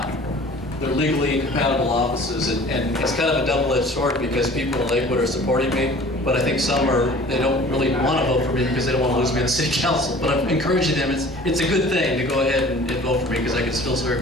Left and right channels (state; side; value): normal; both; correlation 0.47